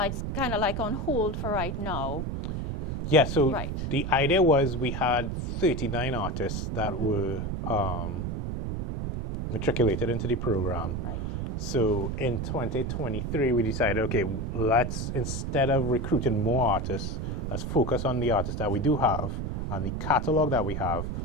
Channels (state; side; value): noise; right; rumble, 3 dB below the sound